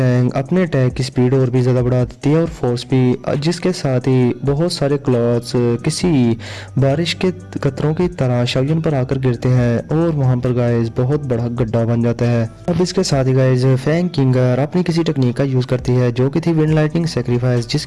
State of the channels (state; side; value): identical; both; correlation 1.00